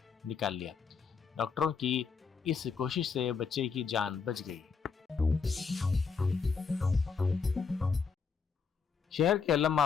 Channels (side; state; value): right; quieter; 5.5 dB